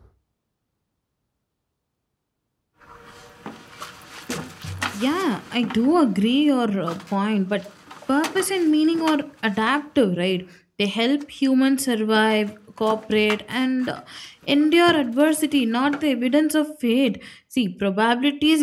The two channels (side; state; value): both; identical; correlation 1.00